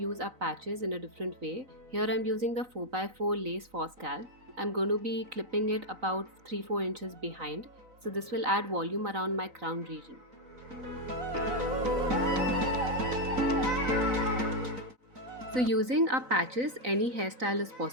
our patches in a different way. Here I'm using the 4x4 lace for scalp. I'm going to be clipping it about 3-4 inches behind, so this will add volume around my crown region. So using our patches, any hairstyle is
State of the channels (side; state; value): left; late; 3.9 ms